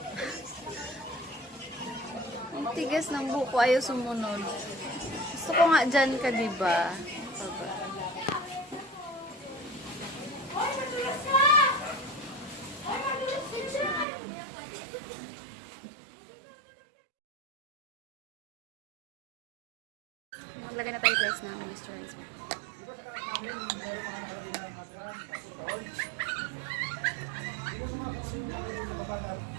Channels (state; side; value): drops out; left; at 14.1 s